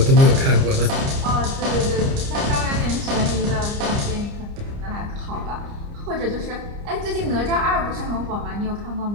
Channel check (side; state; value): left; late; 29 ms